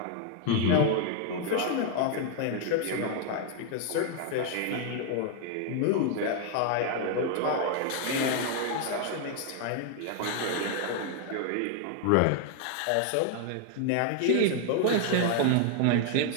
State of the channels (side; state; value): both; different; correlation 0.00